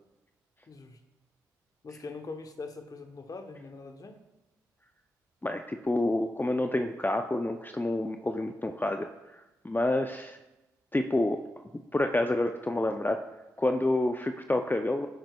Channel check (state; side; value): normal; both; correlation 0.92